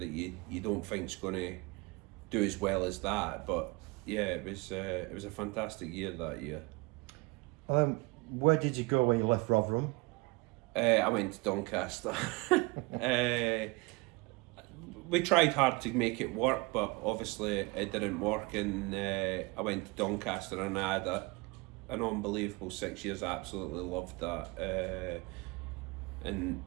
you don't think's going to do as well as that. But yeah, it was a fantastic year that year. Where did you go when you left Rotherham? I went to Doncaster. We tried hard to make it work, but obviously it didn't work, and I went to Doncaster, and I had an unbelievable 6 years. I absolutely loved that, and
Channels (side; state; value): left; quieter; 26.1 dB